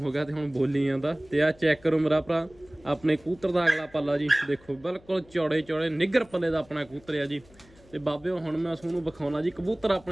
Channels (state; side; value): noise; left; hum, 26 dB below the sound